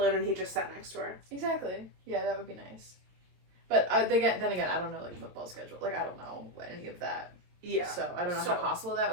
and he just sat next to her. Exactly. Yeah, that would be nice. But then again, I don't know like football schedule. Like I don't know any of that. Yeah. So I don't know how possible that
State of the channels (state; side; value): late; left; 22 ms